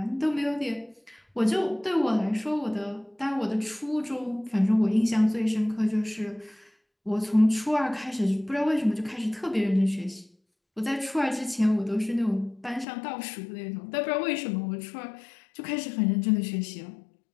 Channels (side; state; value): right; drops out; at 12.9 s